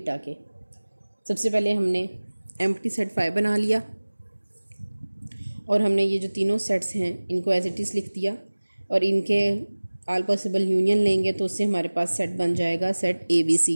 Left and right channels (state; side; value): inverted; both; correlation -1.00